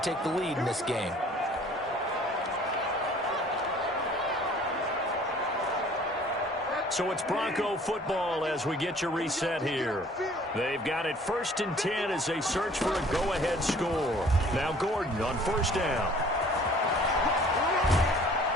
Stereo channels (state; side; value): normal; both; correlation 0.53